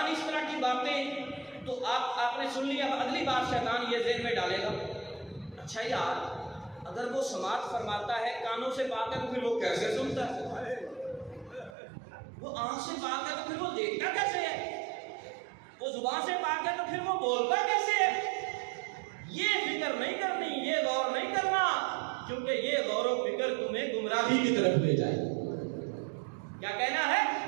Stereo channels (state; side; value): drops out; left; at 11.7 s